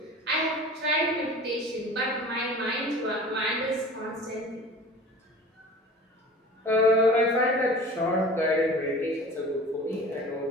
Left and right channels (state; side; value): normal; both; correlation 0.40